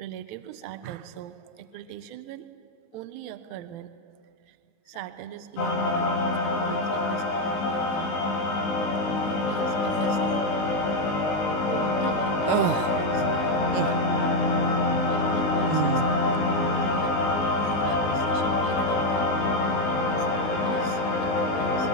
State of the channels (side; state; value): right; late; 19 ms